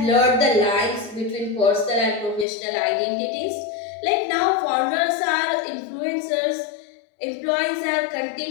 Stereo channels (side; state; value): right; drops out; at 2.5 s